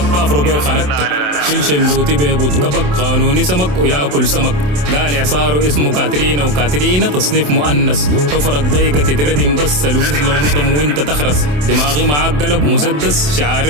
كافرو بيه وخنقتك. شلش اللوتي بيبوت كبك قانوني سمك وياكل سمك. قال اعصاره اسمه كاترينا وكاترينا تصنيف مؤنث. حفرك ضيقة تتردم بس الوز لو نضم وانت تخرس. دماغي معاك قلب مسدس شعار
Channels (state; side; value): late; left; 27 ms